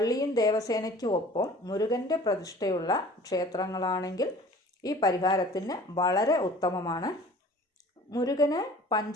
ദേവസേനയ്ക്കും ഒപ്പം മുരുകൻ്റെ പ്രതിഷ്ഠയുള്ള ക്ഷേത്രങ്ങളാണെങ്കിൽ ഈ പരിഹാരത്തിന് വളരെ ഉത്തമമാണ്. മുരുകന്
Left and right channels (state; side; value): normal; both; correlation 0.47